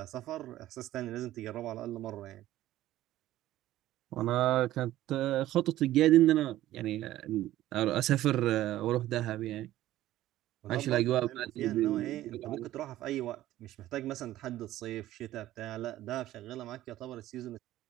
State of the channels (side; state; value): left; quieter; 14.5 dB